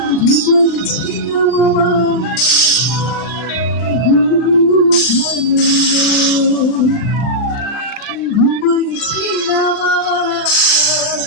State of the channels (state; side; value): late; right; 40 ms